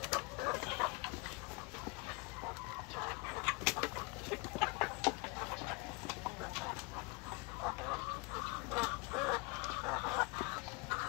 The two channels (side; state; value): right; quieter; 27.5 dB